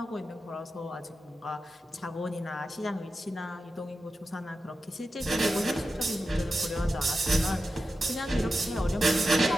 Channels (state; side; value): normal; both; correlation 0.91